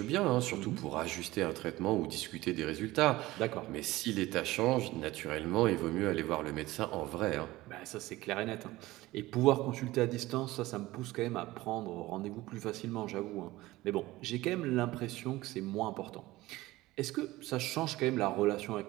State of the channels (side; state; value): left; quieter; 18.2 dB